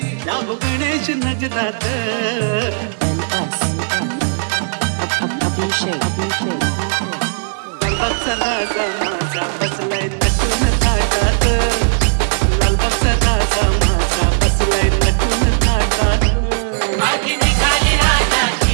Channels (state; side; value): silent; left; digital silence